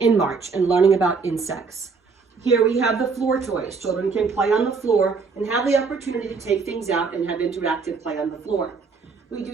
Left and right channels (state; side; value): quieter; left; 4.9 dB